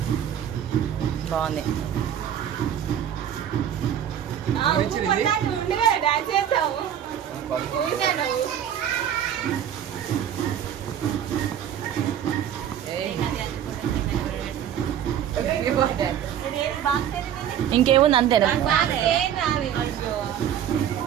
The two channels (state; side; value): quieter; left; 9.8 dB